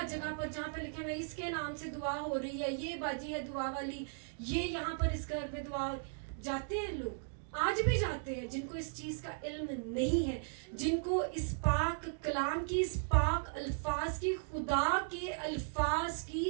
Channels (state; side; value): silent; left; digital silence